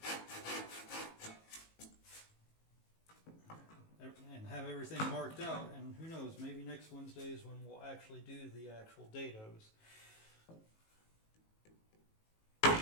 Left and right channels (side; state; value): right; late; 18 ms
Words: And have everything marked out, and who knows, maybe next Wednesday is when we'll actually do the actual dados.